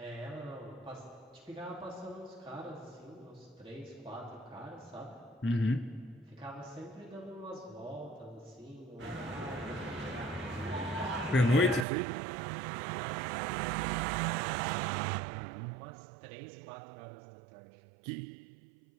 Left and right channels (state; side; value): drops out; left; at 11.9 s